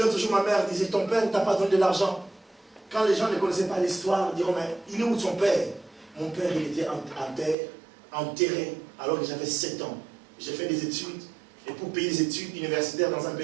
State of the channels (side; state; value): left; drops out; at 7.6 s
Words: toujours, ma mère disait, ton père ne t'a pas donné de l'argent. Quand les gens ne connaissaient pas l'histoire, ils diront, mais il est où son père? Mon père, il était enterré alors que j'avais 7 ans. J'ai fait des études, et pour payer des études universitaires dans un